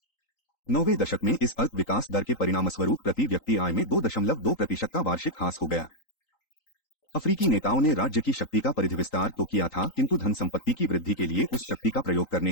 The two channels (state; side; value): late; right; 3.9 ms